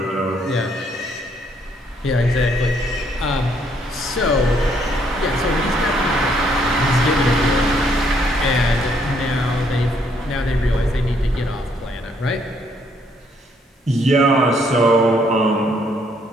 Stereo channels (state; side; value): normal; both; correlation 0.69